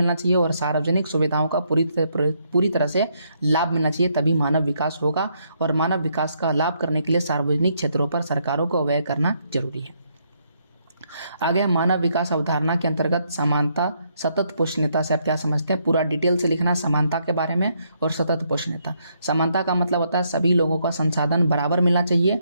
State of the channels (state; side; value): inverted; both; correlation -0.74